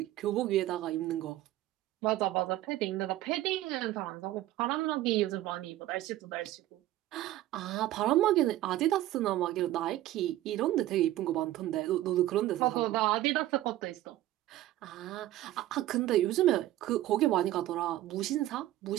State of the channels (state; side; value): quieter; left; 14.8 dB